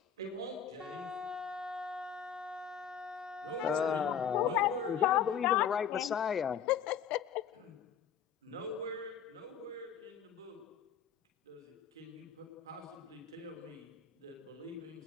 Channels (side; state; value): right; quieter; 8.0 dB